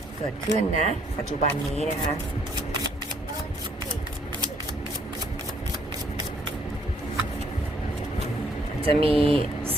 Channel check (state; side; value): normal; both; correlation 0.66